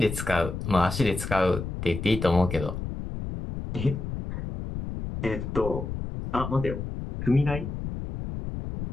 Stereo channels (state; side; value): noise; left; rumble, 6 dB below the sound